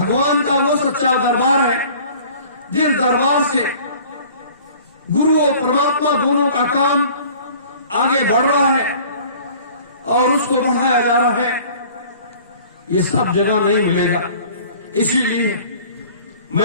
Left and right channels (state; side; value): inverted; both; correlation -0.48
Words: का वो सच्चा दरबार है, जिस दरबार से गुरु और परमात्मा दोनों का काम आगे बढ़ रहा है और उसको बढ़ाया जा रहा है। ये सब जगह नहीं मिलेगा। इसीलिए